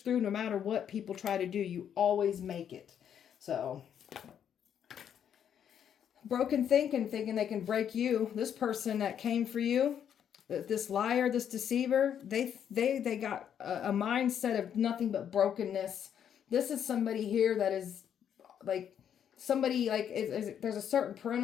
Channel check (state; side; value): quieter; right; 8.9 dB